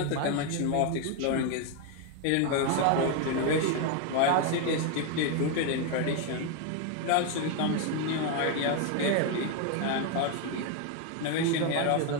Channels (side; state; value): both; different; correlation 0.01